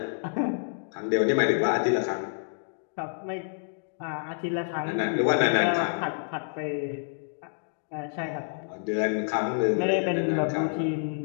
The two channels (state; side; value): silent; right; digital silence